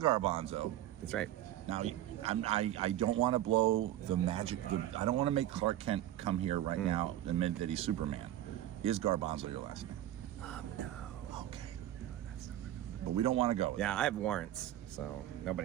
That's right. Now, I don't want to blow the magic. I don't want to make Clark Kent come here right now and admit that he's Superman. Is Garbanzo your last name? No. Okay. No, that's not my real name. But we don't want to go with Yeah, I have warrants, so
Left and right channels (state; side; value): quieter; left; 13.1 dB